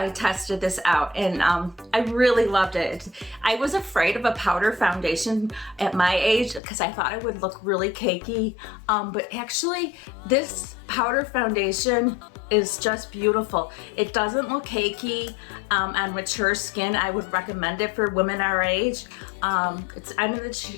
tested this out, and I really loved it. I was afraid of a powder foundation at my age because I thought it would look really cakey, but actually this powder foundation is just beautiful. It doesn't look cakey on mature skin. I would recommend it for women our age. I'm in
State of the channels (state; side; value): drops out; right; at 6.6 s